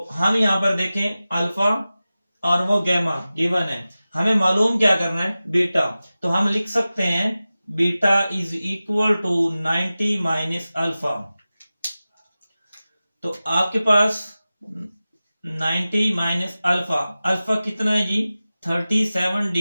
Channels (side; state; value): both; inverted; correlation -0.96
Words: हम यहाँ पर देखें अल्फा और वो गैमा गिवन है, हमें मालूम क्या करना है, बीटा। तो हम लिख सकते हैं beta is equal to 90 minus alpha. तो आपके पास 90 माइनस अल्फा, अल्फा कितना है जी, 37